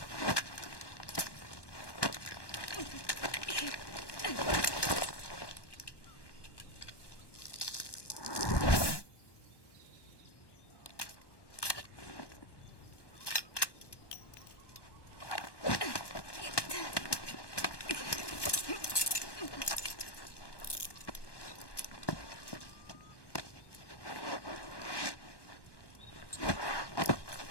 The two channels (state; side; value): late; right; 1.2 ms